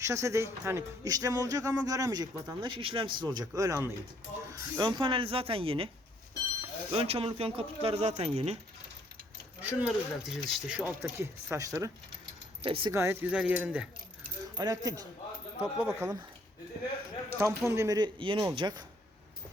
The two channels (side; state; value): both; normal; correlation 0.66